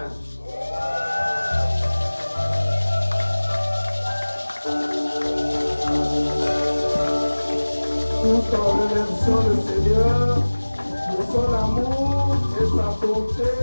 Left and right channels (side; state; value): both; inverted; correlation -1.00